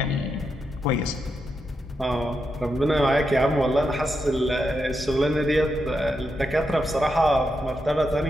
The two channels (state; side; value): normal; both; correlation 0.85